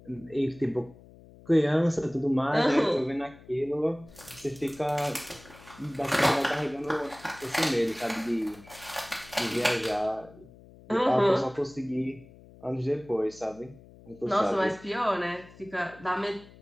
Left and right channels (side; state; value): left; noise; hum, 22 dB below the sound